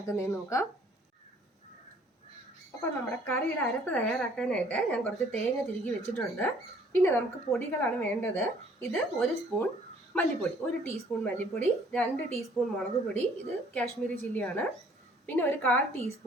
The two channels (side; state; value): both; normal; correlation 0.59